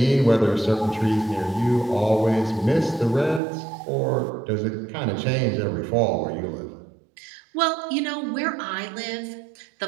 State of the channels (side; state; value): left; drops out; at 3.4 s